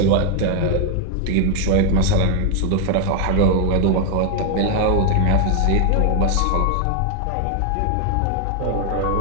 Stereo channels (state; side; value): different; both; correlation 0.00